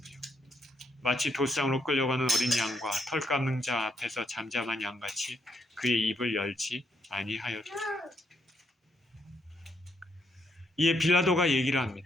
마치 도상으로 끌려가는 어린 양과 털 깎는 자 앞에서 잠잠한 양같이 그의 입을 열지 아니하였다. 이에 빌라도가 얘기를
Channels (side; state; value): both; normal; correlation 0.75